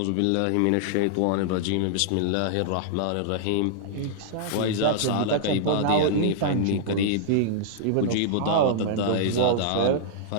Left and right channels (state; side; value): different; both; correlation -0.02